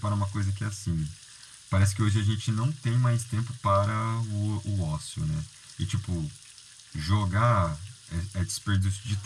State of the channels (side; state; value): both; identical; correlation 1.00